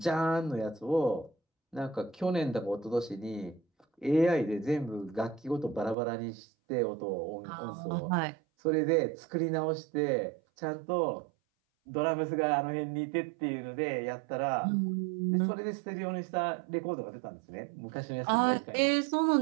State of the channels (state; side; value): drops out; left; at 6.0 s